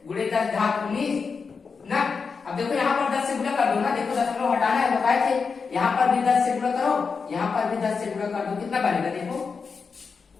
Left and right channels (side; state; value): right; quieter; 5.2 dB